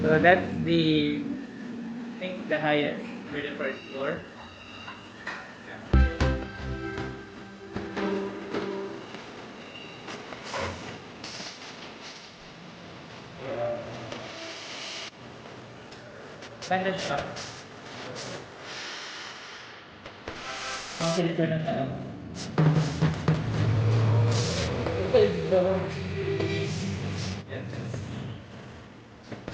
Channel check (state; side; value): identical; both; correlation 1.00